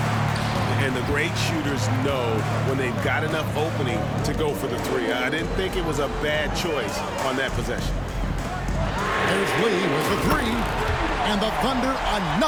And the great shooters know when they've got enough opening to go for the three. I didn't think it was a bad choice on that possession. There's Lee with the three. And the Thunder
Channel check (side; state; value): both; identical; correlation 1.00